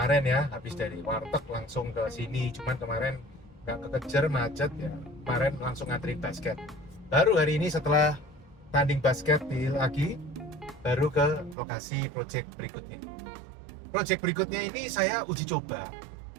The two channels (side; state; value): left; drops out; at 11.6 s